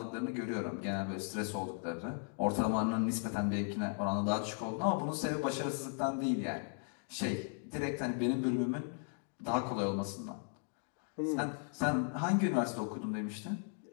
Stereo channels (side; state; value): right; silent; 53 dB below the other